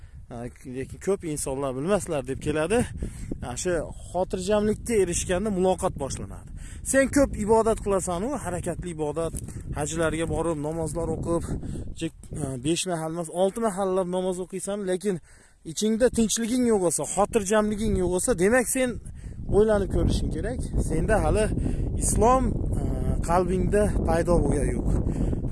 Lekin ko'p insonlar bilmaslar deb keladi. Shu xotirjamlikka erishganda muloqot boshlanadi. Sen ko'p ibodat qilasan, u harakatli ibodat, hajlarga borib, namozlar o'qib, 5 mahal emas, 6 mahallab namoz o'qiysan, lekin ichingda tinchliging yo'q bo'lsa, xotirjamliging yo'q bo'lsa, demak sen o'ylanib ko'rishing kerak. Senda hali islom qalbingda paydo bo'lgan yo'q.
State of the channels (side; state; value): both; identical; correlation 1.00